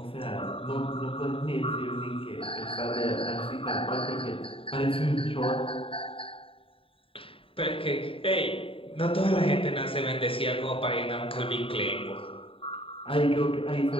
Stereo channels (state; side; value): late; right; 0.26 ms